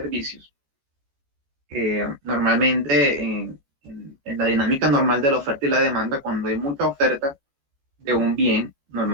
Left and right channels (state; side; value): late; left; 14 ms